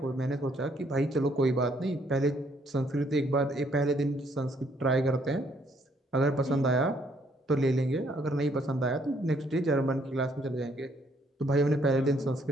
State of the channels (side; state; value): both; normal; correlation 0.68